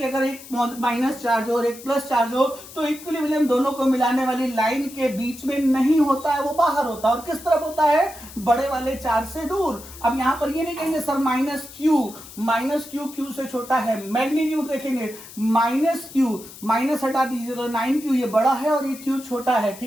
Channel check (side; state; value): left; noise; hiss, 17 dB below the sound